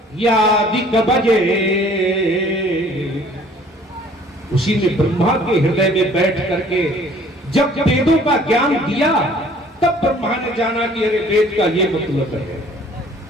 बजे। उसी ने ब्रह्मा के हृदय में बैठ करके जब वेदों का ज्ञान दिया, तब ब्रह्मा ने जाना कि अरे वेद का ये मतलब है।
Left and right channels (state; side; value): normal; both; correlation 0.54